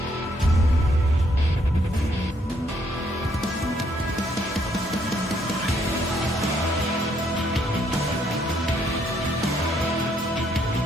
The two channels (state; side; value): normal; both; correlation 0.71